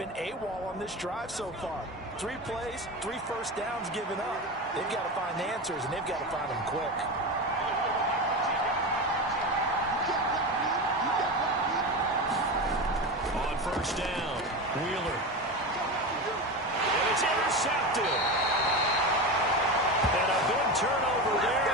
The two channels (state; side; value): normal; both; correlation 0.22